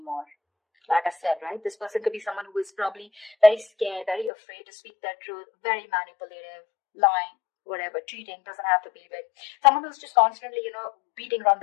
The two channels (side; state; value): right; drops out; at 4.3 s